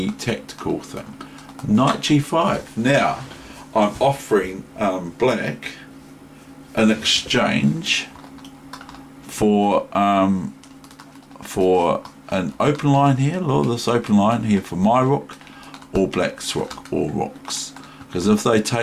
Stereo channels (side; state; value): both; identical; correlation 1.00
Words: tactical thing. Knight g5. Now I'm offering black an exchange for an open line here. Look, this open line here for my rook or black's rook, or rooks. Because if they